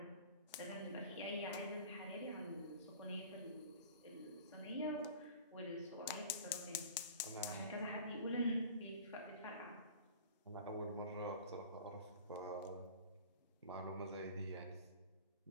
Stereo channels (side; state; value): both; inverted; correlation -0.42